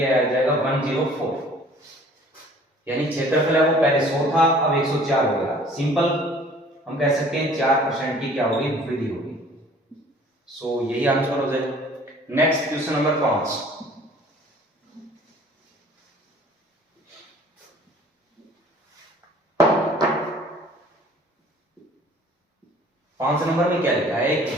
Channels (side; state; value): both; normal; correlation 0.52